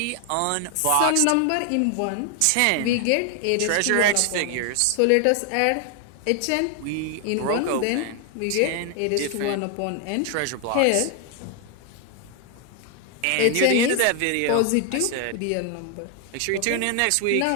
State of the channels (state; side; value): different; both; correlation 0.00